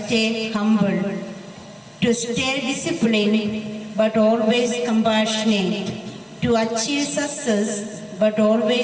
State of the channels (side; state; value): both; identical; correlation 1.00